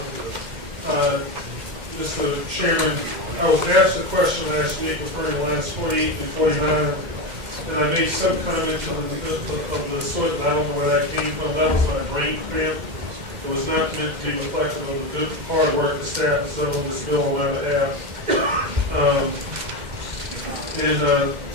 Mr. Chairman, I was asked a question last week referring to lines 48 and 49, and I made some comment of the sort that I don't know where that came from. That was my brain cramp. It was not meant to be reflective of the good hard work the staff has done on this bill on my behalf.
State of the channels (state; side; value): late; left; 2.1 ms